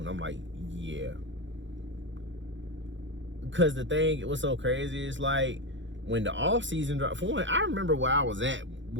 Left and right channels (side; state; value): left; late; 0.54 ms